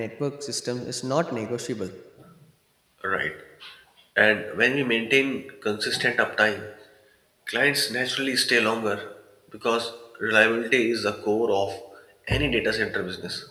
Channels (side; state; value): both; identical; correlation 1.00